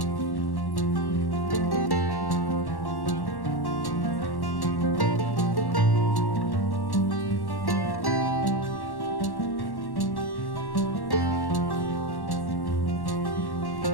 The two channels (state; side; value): late; right; 1.1 ms